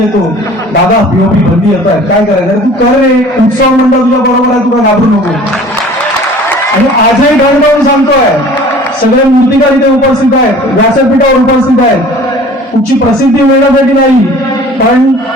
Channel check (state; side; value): normal; both; correlation 0.47